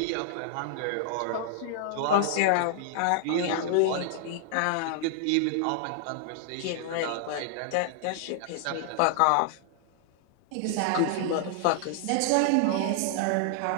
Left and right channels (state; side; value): different; both; correlation -0.01